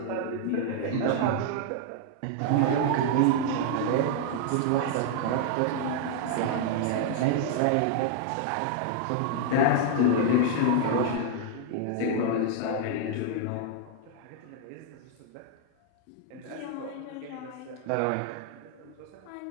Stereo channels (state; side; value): different; both; correlation 0.00